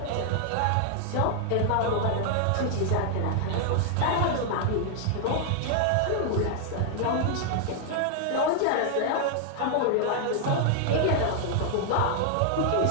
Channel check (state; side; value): different; both; correlation 0.00